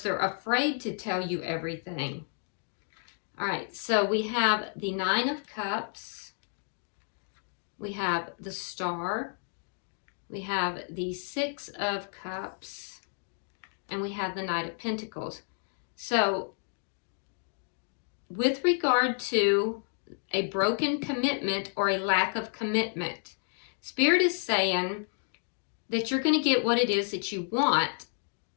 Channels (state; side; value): silent; right; 57 dB below the other